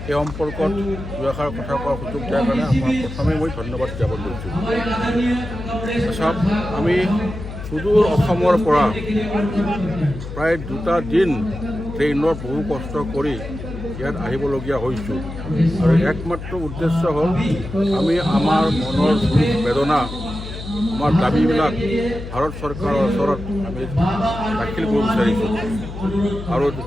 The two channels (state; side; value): noise; left; hum, 10 dB below the sound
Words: সেই সম্পৰ্কত দুআষাৰ কথা কোৱাৰ সুযোগ দিয়াৰ কাৰণে আমাৰ প্ৰথমে মই ধন্যবাদ জ্ঞাপন কৰিছোঁ। চাওক, আমি সুদূৰ অসমৰ পৰা প্ৰায় 2টা দিন ট্ৰেইনত বহু কষ্ট কৰি ইয়াত আহিবলগীয়া হৈছোঁ আৰু একমাত্ৰ উদ্দেশ্য হ'ল আমি আমাৰ মনৰ দুখ বেদনা আমাৰ দাবীবিলাক ভাৰত চৰকাৰৰ ওচৰত আমি দাখিল কৰিব বিচাৰিছোঁ। আৰু